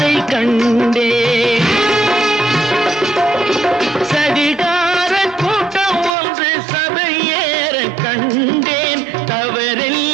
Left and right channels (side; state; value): left; drops out; at 6.1 s